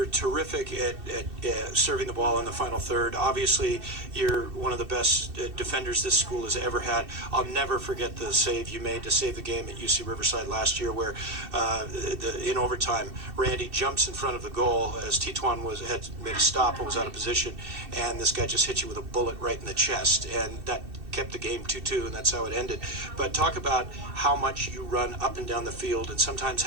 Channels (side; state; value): left; late; 2.7 ms